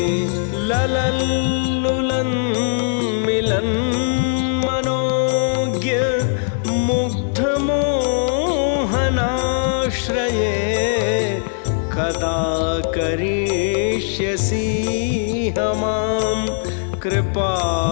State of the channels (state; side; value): silent; right; digital silence